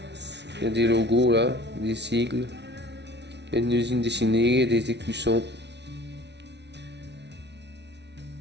il y a des logos là, des sigles. Il y a une usine dessinée, il y a des écussons.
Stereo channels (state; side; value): late; left; 0.50 ms